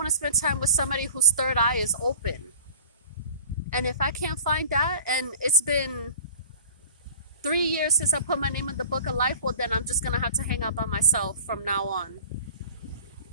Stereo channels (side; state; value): both; inverted; correlation -0.42